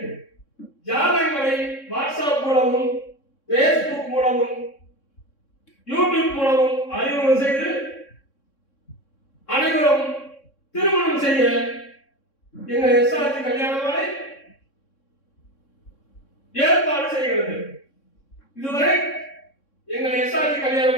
ஜாதகங்களை வாட்ஸ்அப் மூலமும் பேஸ்புக் மூலமும் யூடியூப் மூலமும் அறிமுகம் செய்து அனைவரும் திருமணம் செய்ய எங்கள் எஸ்ஆர்ஜி கல்யாண மாலை ஏற்பாடு செய்கிறது. இதுவரை எங்கள் எஸ்ஆர்ஜி கல்யாண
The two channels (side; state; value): right; late; 3.6 ms